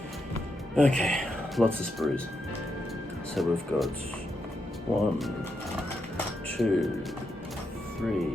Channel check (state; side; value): normal; both; correlation 0.83